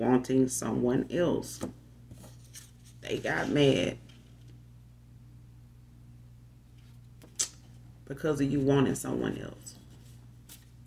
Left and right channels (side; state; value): both; identical; correlation 1.00